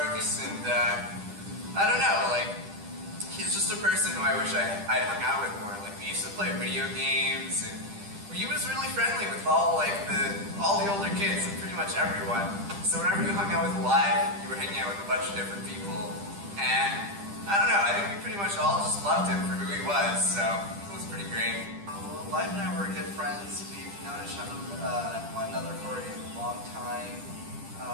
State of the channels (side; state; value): left; late; 10 ms